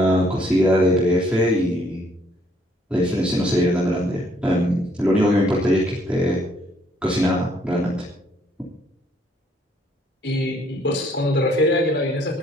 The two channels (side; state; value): both; normal; correlation 0.66